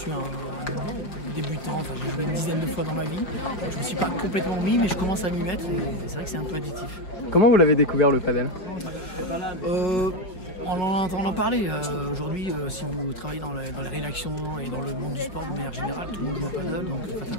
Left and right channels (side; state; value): right; late; 5.2 ms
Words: un débutant, enfin j'ai joué une dizaine de fois dans ma vie. Je ne me suis pas complètement mis, mais je commence à m'y mettre et c'est vrai que c'est un peu additif. Comment vous l'avez découvert le padel? En entendant parler, aujourd'hui, si vous travaillez dans les rédactions et dans le monde du sport de manière générale, tout le monde joue au paddle, donc